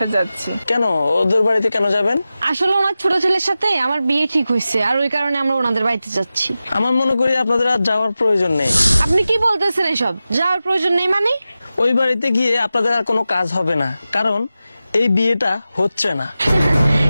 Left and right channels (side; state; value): both; inverted; correlation -0.94